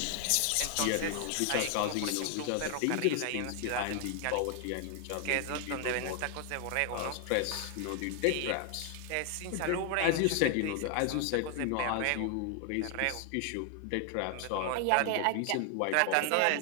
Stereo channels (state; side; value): different; both; correlation 0.00